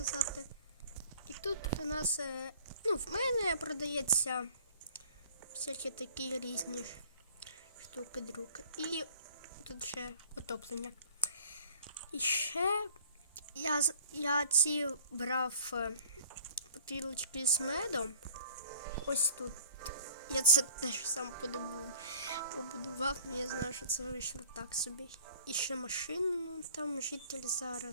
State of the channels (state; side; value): inverted; both; correlation -0.50